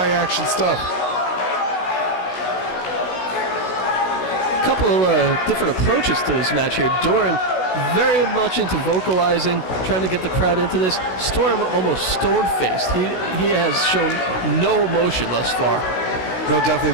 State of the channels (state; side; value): late; right; 16 ms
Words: stuff. A couple of different approaches to this match here. Doring very much into vocalizing, trying to get the crowd into this. Storm almost stone-faced. He has shown no emotion thus far. No, definitely.